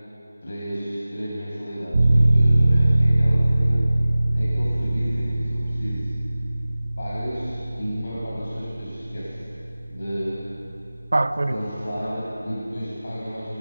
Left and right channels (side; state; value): both; inverted; correlation -0.98